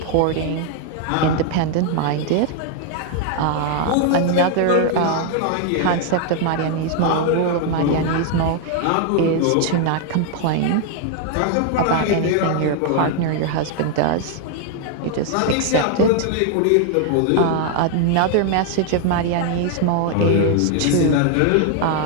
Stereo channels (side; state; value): both; different; correlation 0.00